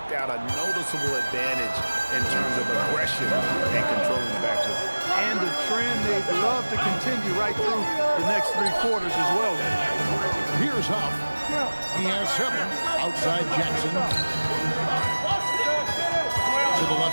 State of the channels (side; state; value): both; inverted; correlation -1.00